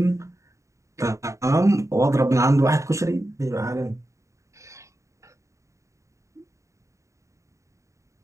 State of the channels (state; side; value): late; left; 0.15 ms